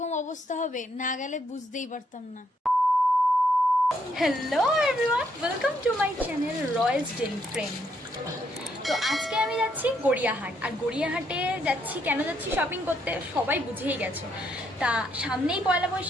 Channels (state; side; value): normal; both; correlation 0.74